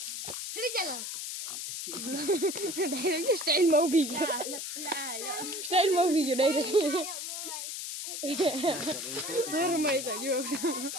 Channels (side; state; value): left; noise; hiss, 6 dB below the sound